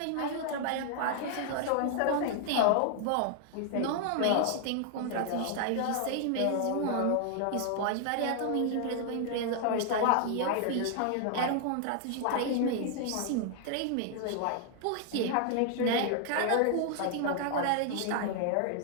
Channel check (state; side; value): different; both; correlation 0.00